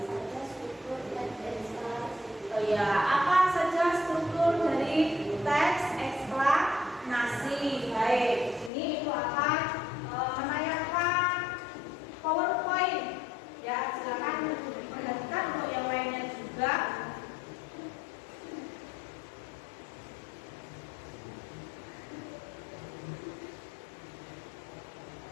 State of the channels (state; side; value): drops out; right; at 8.7 s